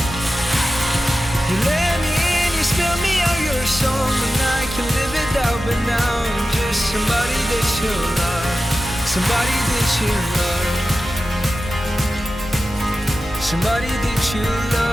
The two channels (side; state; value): both; normal; correlation 0.93